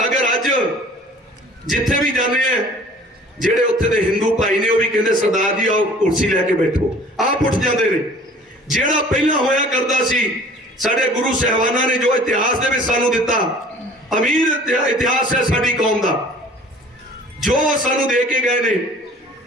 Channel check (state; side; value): normal; both; correlation 0.49